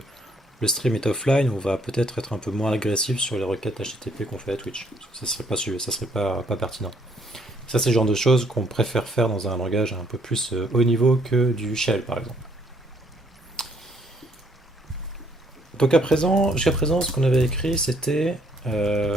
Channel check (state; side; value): normal; both; correlation 0.66